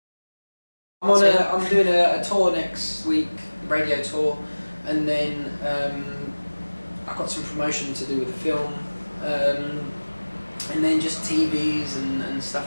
I'm doing a tour next week, radio tour, and then I've got some promotion to do with the film, and then just TVs and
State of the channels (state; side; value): inverted; both; correlation -1.00